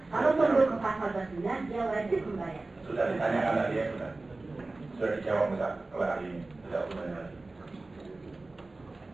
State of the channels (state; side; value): quieter; left; 3.2 dB